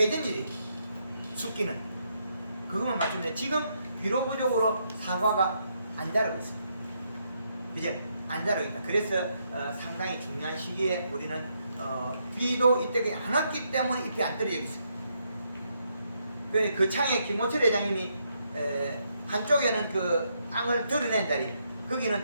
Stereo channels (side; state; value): both; inverted; correlation -0.77